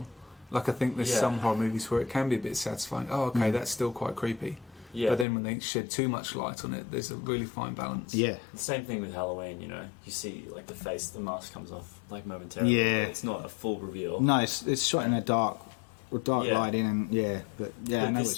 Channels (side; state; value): right; drops out; at 5.2 s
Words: Like, I think there's some horror movies where it can be a bit satisfying. Oh, okay, that's still quite creepy. Yeah. But then when they shed too much light on it, there's a really fine balance. Yeah. The same thing with Halloween, you see like the face, the mask comes off like momentarily. Yeah. It's not a full reveal. No, it's shot in a dark lighting, and I know